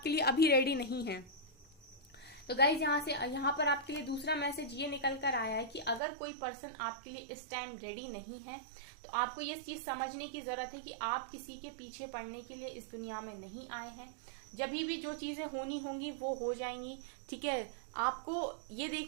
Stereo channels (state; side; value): drops out; left; at 6.0 s